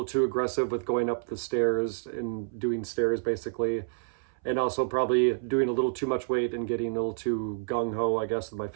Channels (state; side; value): silent; left; 59 dB below the other